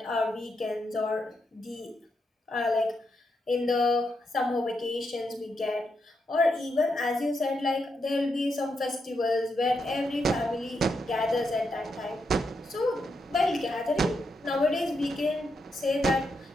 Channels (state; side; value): normal; both; correlation 0.82